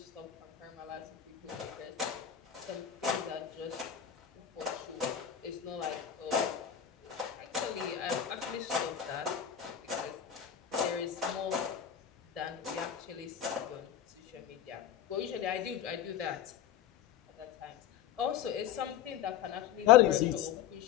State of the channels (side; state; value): right; quieter; 9.7 dB